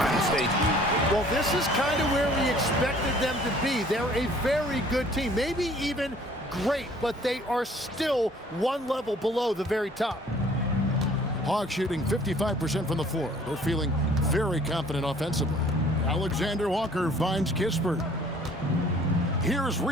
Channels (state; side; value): normal; both; correlation 0.55